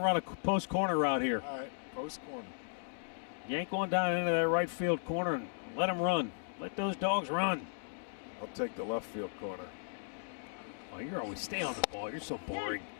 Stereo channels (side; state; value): right; silent; digital silence